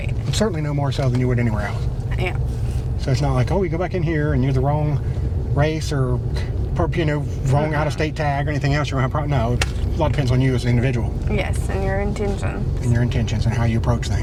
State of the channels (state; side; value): identical; both; correlation 1.00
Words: Certainly no more so than you would anywhere else. Yeah. So it's not like, oh, you go back in here and you're the wrong race or, wrong out-of-state tag or anything else. You're going to have no. A lot depends on you as an individual. Yes, and your intentions. And your intentions and how you approach